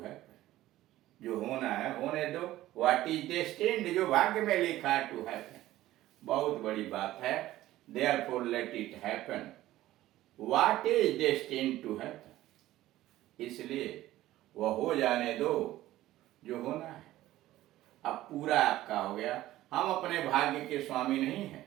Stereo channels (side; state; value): left; quieter; 15.3 dB